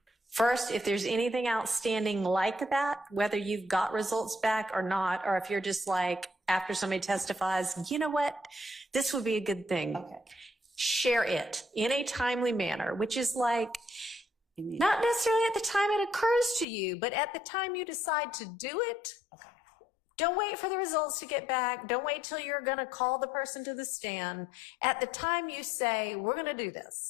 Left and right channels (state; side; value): drops out; right; at 16.7 s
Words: first, if there's anything outstanding like that, whether you've got results back or not, or if you're just like, after somebody testifies, you know what, this would be a good thing. Okay. Share it in a timely manner, which is like, not necessarily at the time it occurs to you, but at the time you decide to do it. Okay. Don't wait for the results to get back. Don't wait till you're going to call the person to the stand. At the time you say, we're going to do